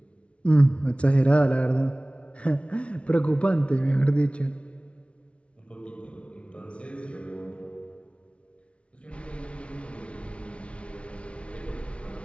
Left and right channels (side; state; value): right; late; 0.061 ms